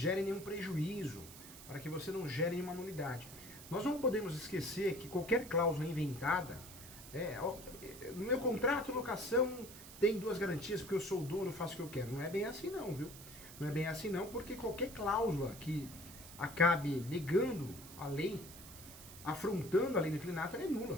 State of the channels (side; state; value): right; noise; hiss, 15 dB below the sound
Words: nenhum prejuízo, para que você não gere nenhuma nulidade. Nós não podemos esquecer que qualquer cláusula inventada, no meu contrato de locação tem duas garantias porque eu sou o dono, faço o que eu quero. Não é bem assim não, viu? Não é bem assim não, porque qualquer cláusula que acabe negando a lei, afrontando a lei do inquilinato, ela é